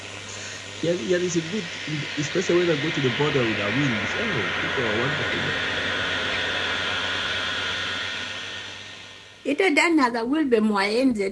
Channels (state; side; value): identical; both; correlation 1.00